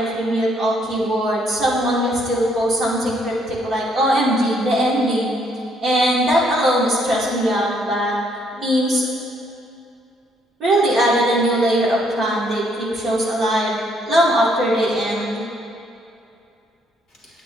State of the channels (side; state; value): both; normal; correlation 0.69